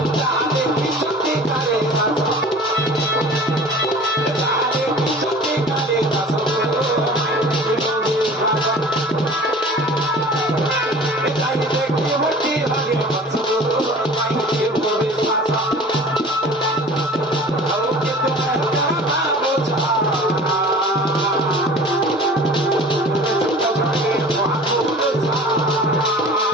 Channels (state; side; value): normal; both; correlation 0.43